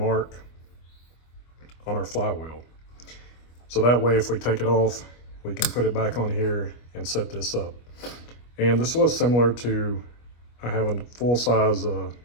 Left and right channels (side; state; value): right; late; 25 ms